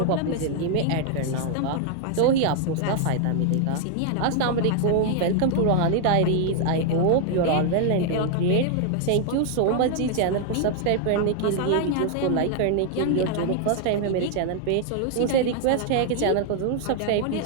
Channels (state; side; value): different; both; correlation 0.00